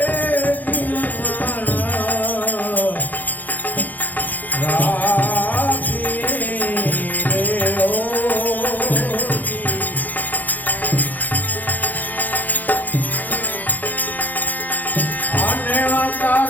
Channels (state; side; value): late; right; 0.083 ms